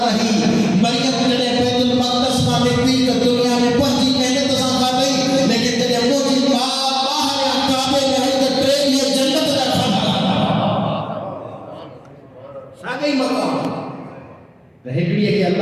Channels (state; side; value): identical; both; correlation 1.00